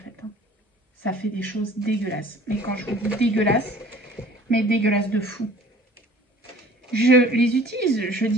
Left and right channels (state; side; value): normal; both; correlation 0.49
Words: Hein. Ça fait des choses dégueulasses. Mais quand je vous dis dégueulasse, mais dégueulasse de fou. Je les utilise. Je